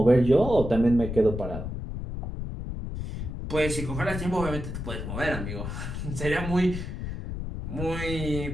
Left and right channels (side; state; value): left; noise; rumble, 6 dB below the sound